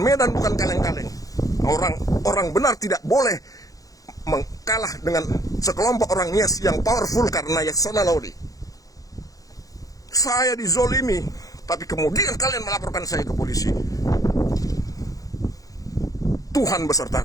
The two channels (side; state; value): right; late; 0.17 ms